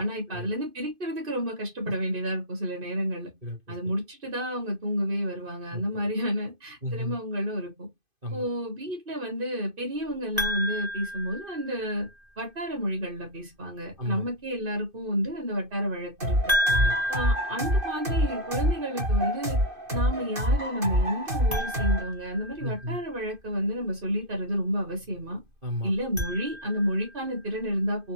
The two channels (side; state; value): left; late; 2.5 ms